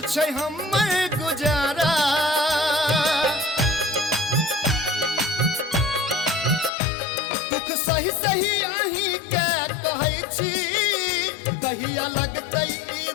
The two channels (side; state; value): right; drops out; at 6.7 s